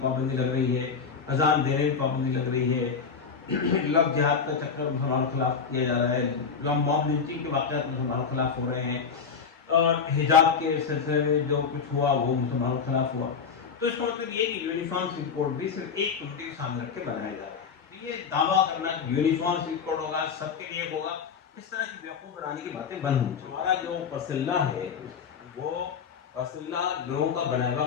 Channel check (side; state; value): right; quieter; 6.0 dB